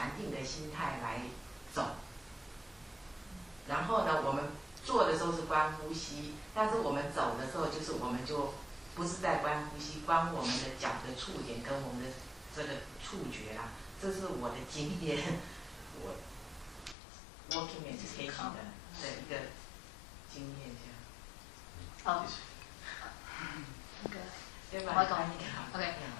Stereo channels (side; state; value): right; drops out; at 16.9 s